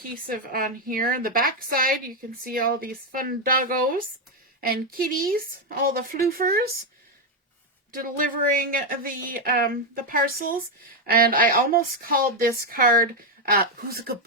on here. On the back side, you can see all these fun doggos and kitties, all the floofers delivering the parcels. And I almost called this card, Who's a Good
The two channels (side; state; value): both; normal; correlation 0.04